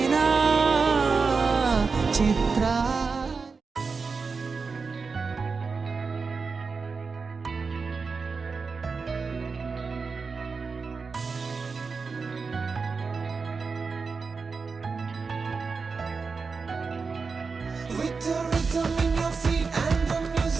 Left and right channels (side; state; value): left; quieter; 4.8 dB